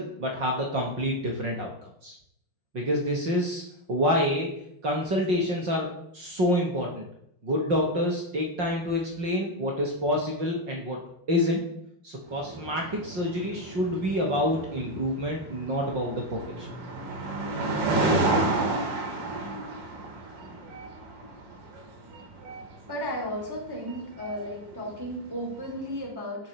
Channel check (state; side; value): late; left; 5.6 ms